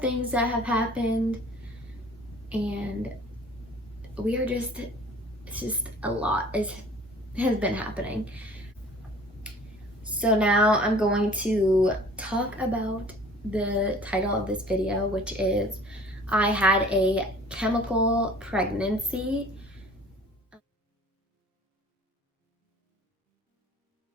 things that have happened, and it's just a lot has been happening. So now I'm going to talk about the title of this video, which is I had a chemical pregnancy.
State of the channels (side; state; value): both; normal; correlation 0.49